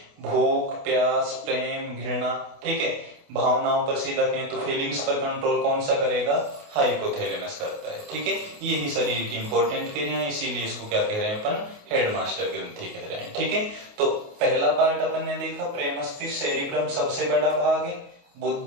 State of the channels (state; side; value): late; left; 28 ms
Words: भूख, प्यास, प्रेम, घृणा, ठीक है, भावनाओं पर सीधा कहें तो फीलिंग्स पर कंट्रोल कौन सा करेगा, हाइपोथैलेमस करता है। ठीक है, यही शरीर की इंपॉर्टेंट क्रिया है, इसीलिए इसको क्या कह रहे हैं अपन, हेडमास्टर ग्रंथि कह रहे हैं। ठीक है, तो पहला पार्ट अपन ने देखा, प्रेम मस्तिष्क, सेरिब्रम सबसे बड़ा भाग है,